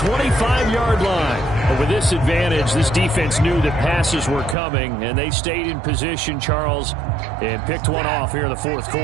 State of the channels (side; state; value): left; drops out; at 4.5 s